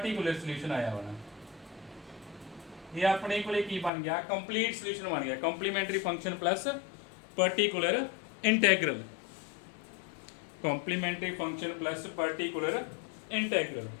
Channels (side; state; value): right; drops out; at 3.9 s